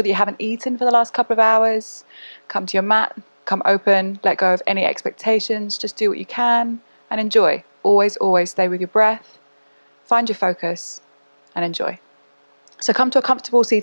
that you haven't eaten for the last couple of hours. Come to your mat, come open, let go of any expectations, just do what you can and enjoy. Always, always stay with your breath, find your focus and enjoy. So come to a comfortable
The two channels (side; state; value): both; inverted; correlation -1.00